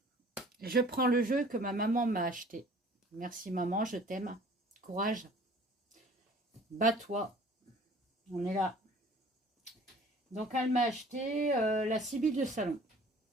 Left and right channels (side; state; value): both; normal; correlation 0.50